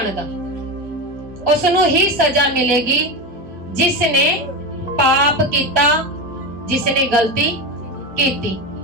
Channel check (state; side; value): normal; both; correlation 0.18